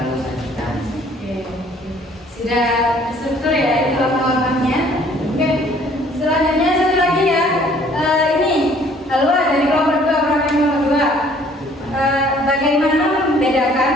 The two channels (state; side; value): normal; both; correlation 0.58